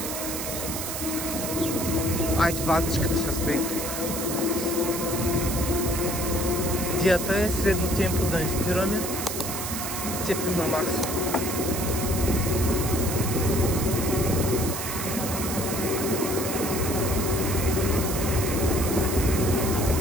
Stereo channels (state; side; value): noise; right; hiss, 4 dB below the sound